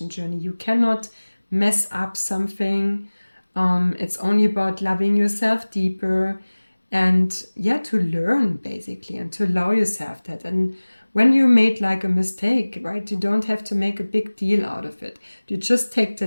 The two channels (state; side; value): inverted; both; correlation -1.00